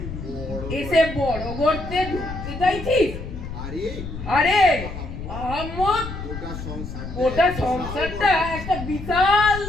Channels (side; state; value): left; noise; rumble, 9 dB below the sound